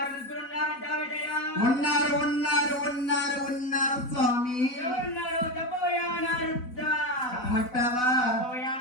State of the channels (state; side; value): late; right; 4.0 ms